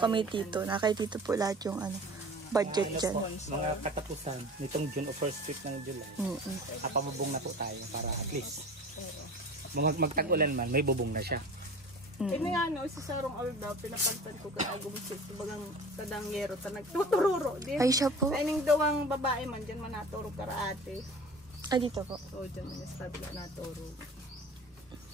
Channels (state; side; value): normal; both; correlation 0.39